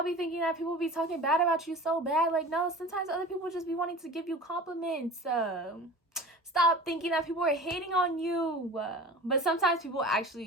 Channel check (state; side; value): normal; both; correlation 0.37